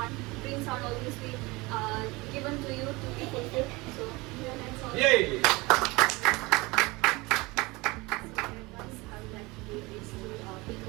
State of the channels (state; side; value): quieter; left; 23.5 dB